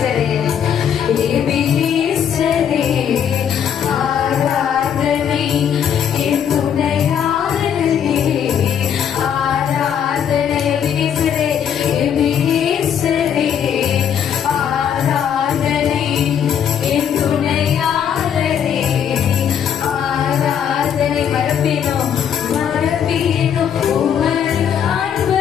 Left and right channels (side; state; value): right; quieter; 8.5 dB